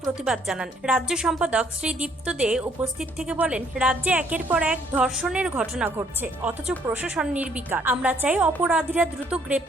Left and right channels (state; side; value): normal; both; correlation 0.66